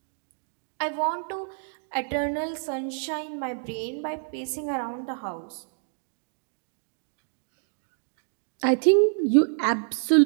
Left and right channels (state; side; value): silent; left; digital silence